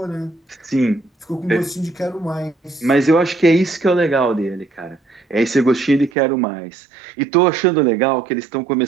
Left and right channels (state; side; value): drops out; left; at 6.1 s